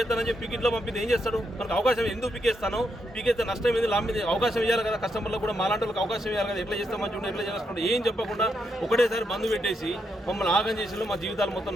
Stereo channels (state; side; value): normal; both; correlation 0.80